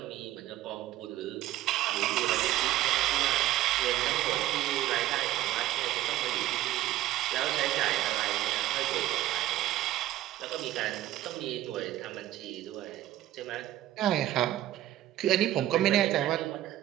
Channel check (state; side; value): quieter; left; 14.3 dB